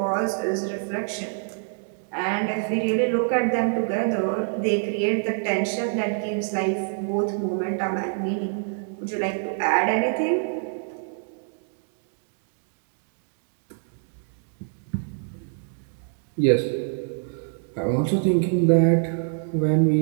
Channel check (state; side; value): silent; left; 61 dB below the other